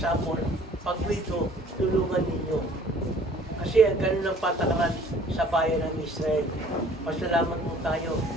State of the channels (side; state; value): both; normal; correlation 0.54